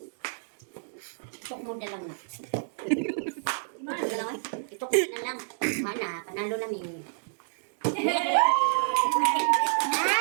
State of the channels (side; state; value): left; silent; digital silence